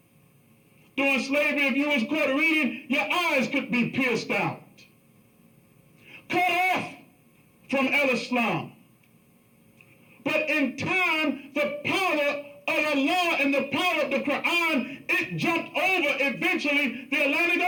During slavery, if you was caught reading, your eyes could be pierced out. Cut off from El-Islam. But in time, the power of Allah and the power of the Quran, it jumped over eventually the Atlantic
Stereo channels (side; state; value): both; identical; correlation 1.00